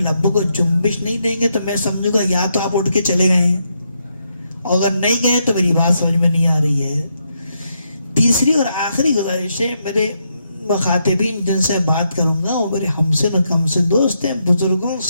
کو جنبش نہیں دیں گے تو میں سمجھوں گا یا تو آپ اٹھ کے چلے گئے ہیں، اور اگر نہیں گئے تو میری بات سمجھ میں نہیں آ رہی ہے۔ تیسری اور آخری گزارش ہے، میرے مخاطبین جن سے بات کروں گا وہ میرے ہمسن و کمسن دوست ہیں، بزرگوں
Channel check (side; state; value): both; inverted; correlation -0.80